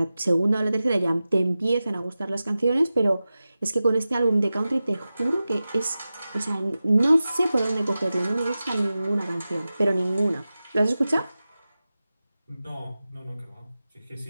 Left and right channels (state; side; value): inverted; both; correlation -0.95